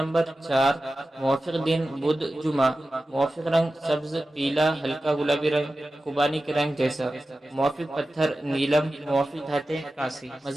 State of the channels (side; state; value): both; normal; correlation 0.94